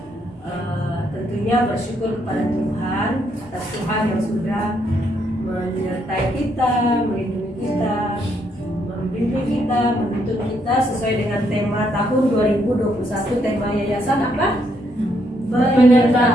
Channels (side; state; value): both; normal; correlation 0.74